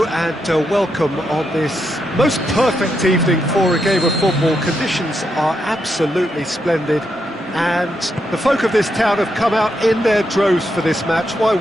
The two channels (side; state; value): both; normal; correlation 0.82